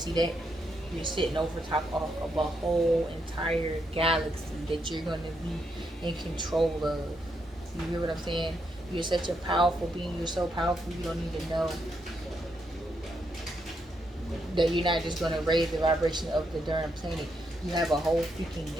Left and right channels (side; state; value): both; normal; correlation 0.79